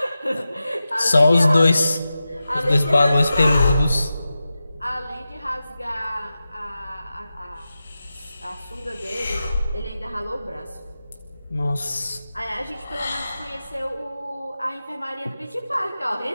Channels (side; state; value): both; inverted; correlation -0.93